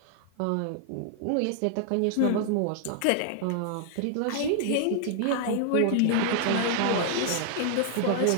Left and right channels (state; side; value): different; both; correlation 0.00